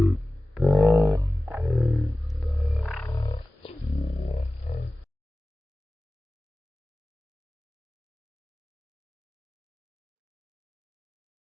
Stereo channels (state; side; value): normal; both; correlation 0.97